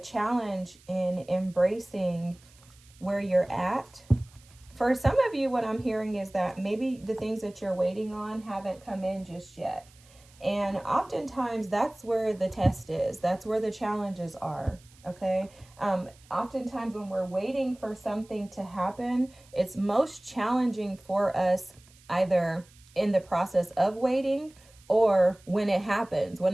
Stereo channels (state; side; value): noise; right; hiss, 27 dB below the sound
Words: challenge in embracing where you're at. For some of you, what I'm hearing is that maybe the things that you're waiting on haven't come in just yet. And oftentimes that's where the test is. That's where the challenges are. Okay. Oftentimes when we're waiting for something to happen, it's most challenging for us either in the process of waiting or when it happens. When